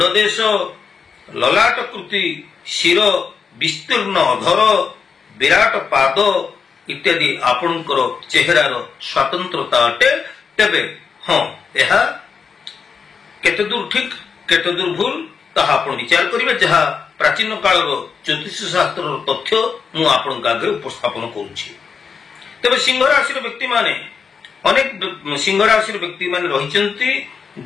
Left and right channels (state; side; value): quieter; right; 5.9 dB